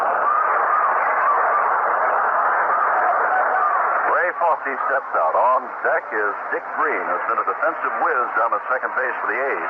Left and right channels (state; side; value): identical; both; correlation 1.00